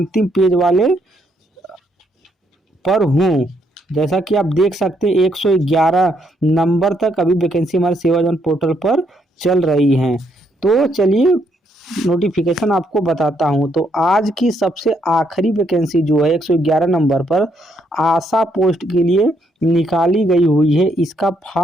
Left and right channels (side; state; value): both; normal; correlation 0.74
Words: पेज वाले पर हूँ। जैसा कि आप देख सकते हैं 111 नंबर तक अभी वैकेंसी हमारे सेवाजन पोर्टल पर चल रही हैं। तो चलिए नोटिफिकेशन आपको बताता हूं। तो आज की सबसे आखिरी वैकेंसी जो है 111 नंबर पर आशा पोस्ट के लिए निकाली गई हुई है। इसका